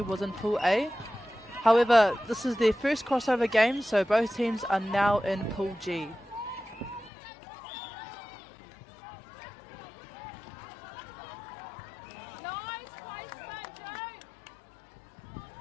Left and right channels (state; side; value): drops out; right; at 7.1 s